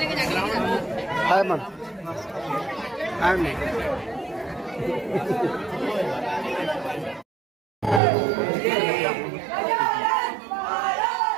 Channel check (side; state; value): left; drops out; at 8.0 s